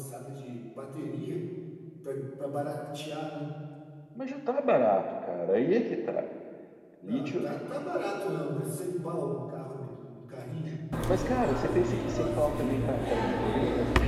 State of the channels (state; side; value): identical; both; correlation 1.00